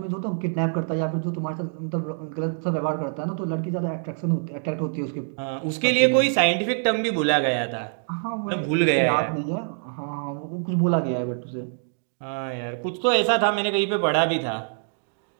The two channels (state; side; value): silent; left; digital silence